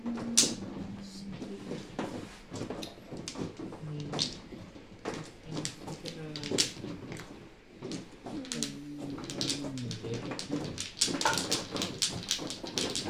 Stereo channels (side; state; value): both; identical; correlation 1.00